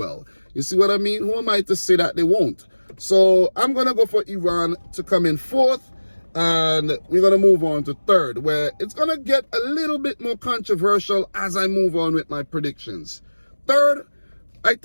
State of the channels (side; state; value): both; inverted; correlation -1.00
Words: You see what I mean? Who am I to say that they won't? So, I'm going to go for Iran to come in 4th. And we're going to move on to 3rd, where it's going to get a little bit more controversial as I move on with my predictions. 3rd, I